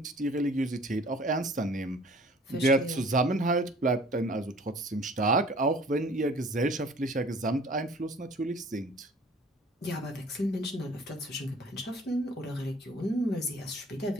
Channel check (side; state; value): both; normal; correlation 0.50